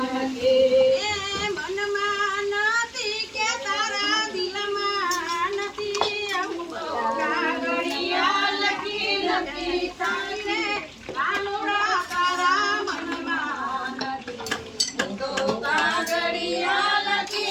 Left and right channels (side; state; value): both; identical; correlation 1.00